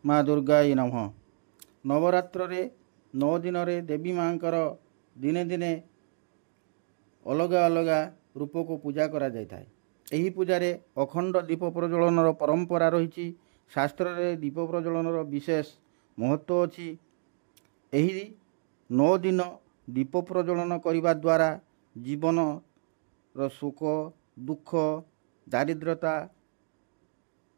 माँ दुर्गाई नमः। नवरात्र 9 दिन देवी माँ दिने दिने अलग अलग रूप को पूजा करा जाए। यही पूजारे अखंड दीप प्रज्वलन परंपरा रही। शास्त्र रे दीप प्रज्वलन विशेष महत्व अच्छी। यही 9 दिन दीप प्रज्वलन करने द्वारा जीवन रो सुख दुख दारिद्रता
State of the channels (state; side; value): silent; left; digital silence